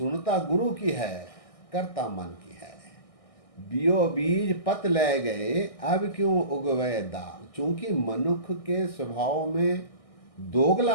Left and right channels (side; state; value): right; late; 1.6 ms